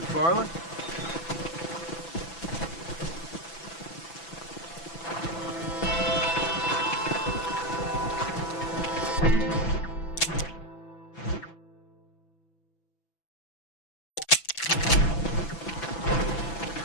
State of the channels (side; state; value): right; late; 6.0 ms